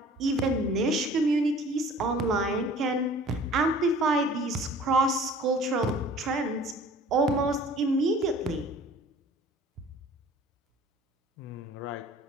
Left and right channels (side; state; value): both; normal; correlation 0.48